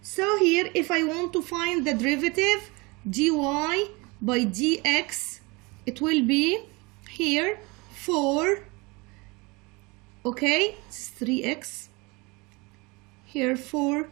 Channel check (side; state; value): left; quieter; 26.2 dB